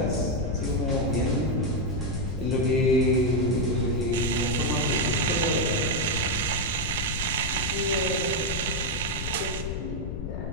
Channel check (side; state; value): left; noise; rumble, 5 dB below the sound